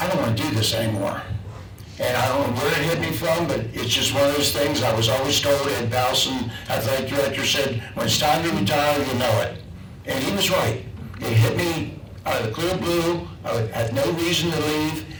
don't want to do this anymore. And I don't know where it hit me from, but it's just one of those things. I was always told, Ed Bowson, athletic director, said, when it's time to retire, you know it. And he was right. It hit me out of the clear blue. I had no reason to leave,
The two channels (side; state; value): both; identical; correlation 1.00